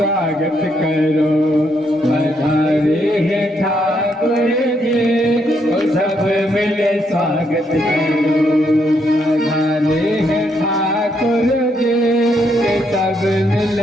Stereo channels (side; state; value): both; normal; correlation 0.75